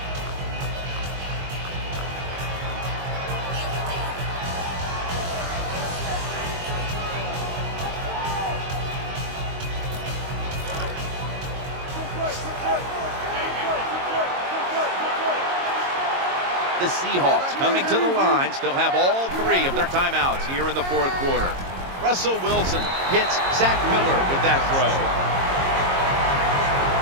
The Seahawks coming to the line, still have all 3 of their timeouts here in the 4th quarter. Russell Wilson hits Zach Miller with that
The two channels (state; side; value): late; left; 22 ms